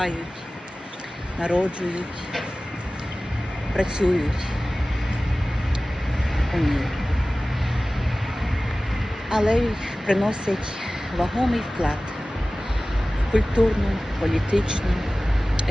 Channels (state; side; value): normal; both; correlation 0.97